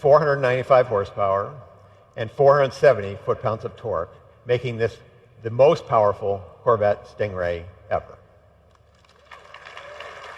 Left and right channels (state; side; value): identical; both; correlation 1.00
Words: horsepower and 470 foot-pounds of torque, making this the most powerful Corvette Stingray ever.